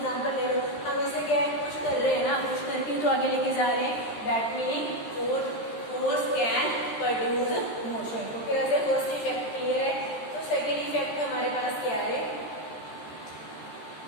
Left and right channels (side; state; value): right; late; 13 ms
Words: ले लो, हम इसे क्या है पुश कर रहे हैं ना, पुश करके तो आगे लेके जा रहे हैं। That meaning force can produce motion. तो फिर ऐसे फर्स्ट इफेक्ट क्लियर है। तो सेकंड इफेक्ट हमारे पास क्या है,